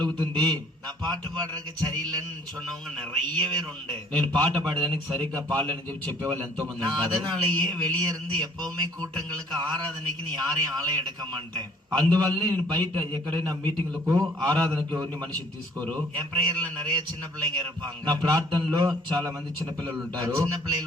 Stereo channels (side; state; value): both; normal; correlation 0.56